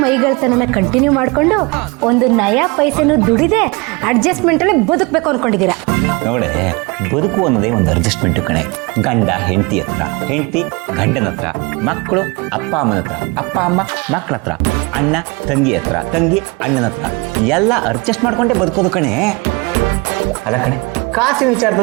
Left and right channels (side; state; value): left; quieter; 27.2 dB